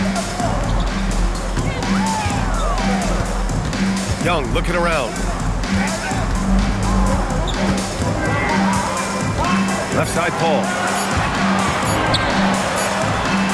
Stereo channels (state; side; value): identical; both; correlation 1.00